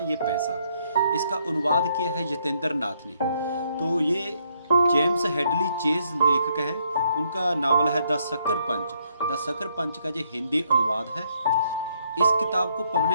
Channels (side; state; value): both; inverted; correlation -0.72